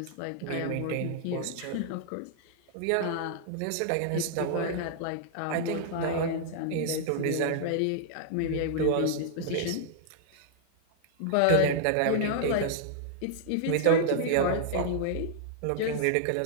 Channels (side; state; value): both; different; correlation -0.01